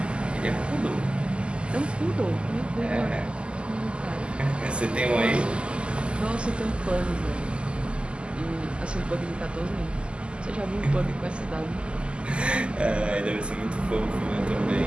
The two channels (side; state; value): left; late; 0.052 ms